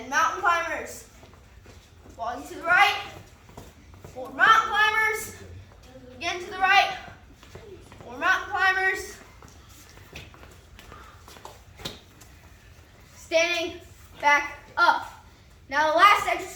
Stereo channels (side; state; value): both; identical; correlation 1.00